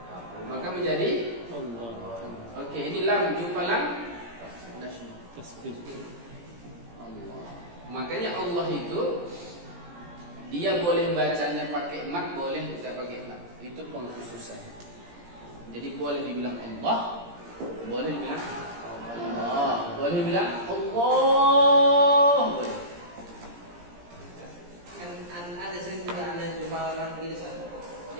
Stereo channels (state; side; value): late; left; 17 ms